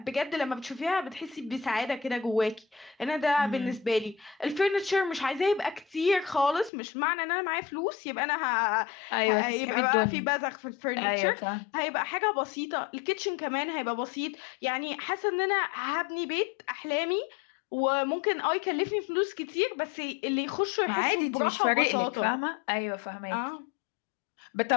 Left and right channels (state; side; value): drops out; right; at 6.7 s